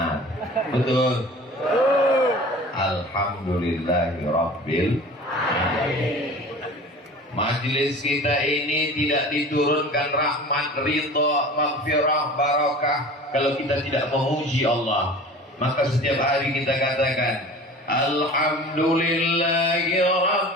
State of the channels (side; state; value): both; normal; correlation 0.40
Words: Betul? Alhamdulillahirabbil alamin. Majelis kita ini tidak diturunkan rahmat, ridha, maghfirah, barakah kalau kita tidak memuji Allah. Maka setiap hari kita katakan Alhamdulillahi